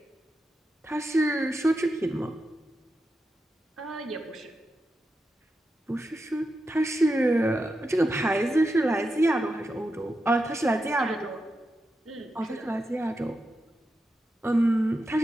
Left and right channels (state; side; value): normal; both; correlation 0.88